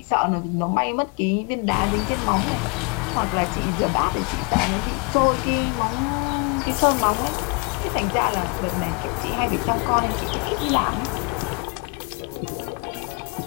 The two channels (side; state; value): right; quieter; 32.0 dB